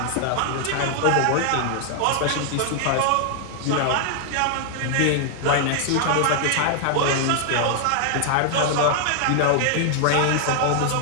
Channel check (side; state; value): both; different; correlation 0.00